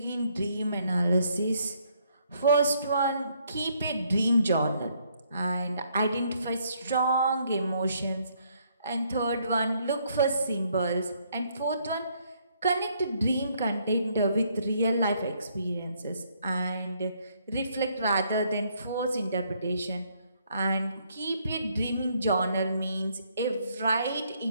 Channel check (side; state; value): both; inverted; correlation -0.70